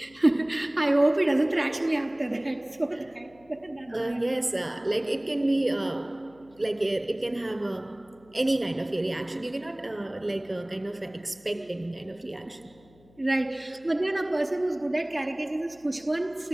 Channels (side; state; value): left; noise; hum, 28 dB below the sound